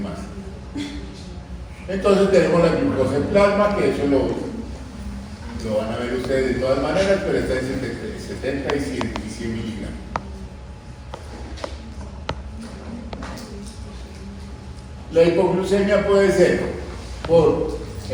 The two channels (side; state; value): both; identical; correlation 1.00